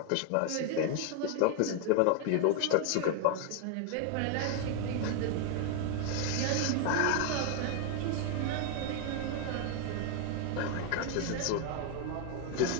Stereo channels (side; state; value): both; different; correlation 0.01